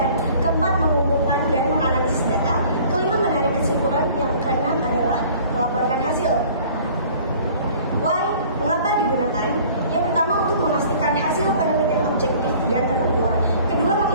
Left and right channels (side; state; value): both; inverted; correlation -0.51